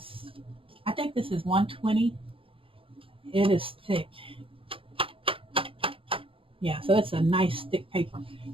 I think this is 120. It is thick. Yeah, so it's a nice thick paper,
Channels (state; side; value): late; left; 0.26 ms